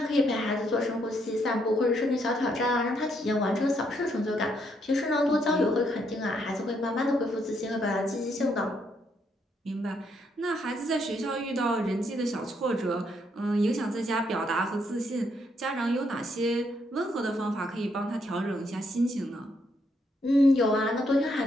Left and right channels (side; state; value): both; normal; correlation 0.74